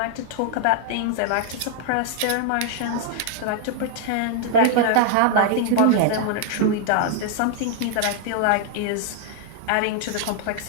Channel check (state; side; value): different; both; correlation 0.00